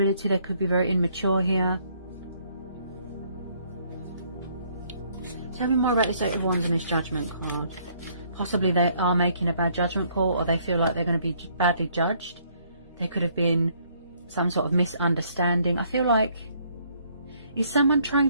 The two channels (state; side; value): inverted; both; correlation -0.66